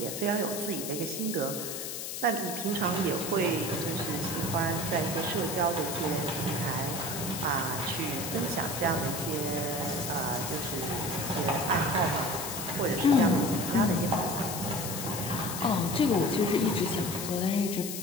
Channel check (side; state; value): left; noise; hiss, 6 dB below the sound